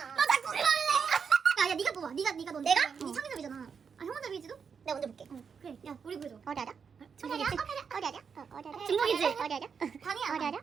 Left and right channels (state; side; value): quieter; left; 6.3 dB